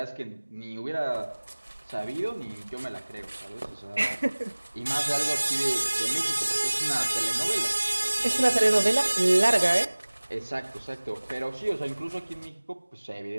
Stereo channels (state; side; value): inverted; both; correlation -1.00